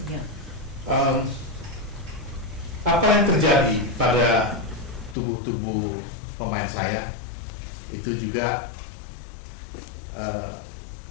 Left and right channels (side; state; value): right; drops out; at 5.2 s